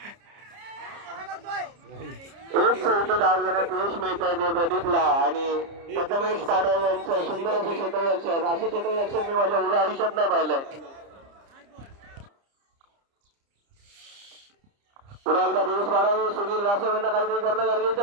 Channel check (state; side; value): late; left; 30 ms